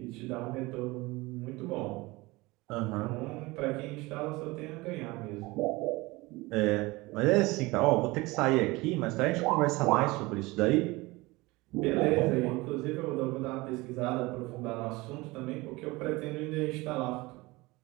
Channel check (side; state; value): left; quieter; 22.1 dB